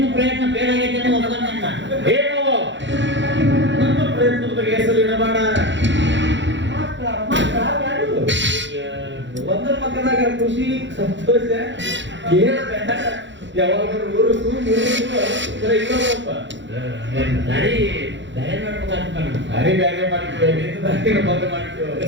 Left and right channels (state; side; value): late; left; 0.54 ms